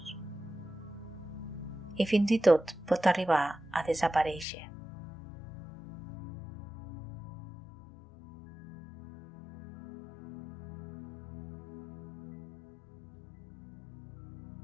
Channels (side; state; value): right; drops out; at 4.5 s